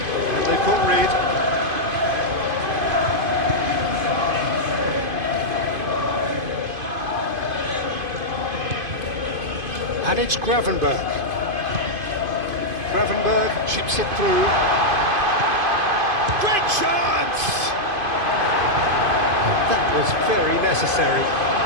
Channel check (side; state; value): left; late; 2.5 ms